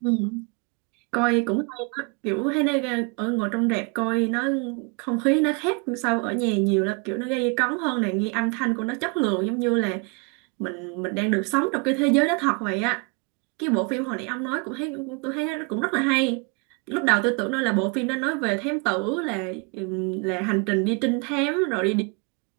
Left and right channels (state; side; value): quieter; left; 33.1 dB